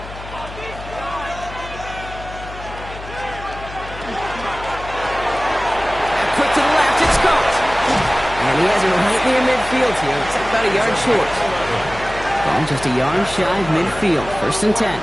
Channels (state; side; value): noise; left; hum, 13 dB below the sound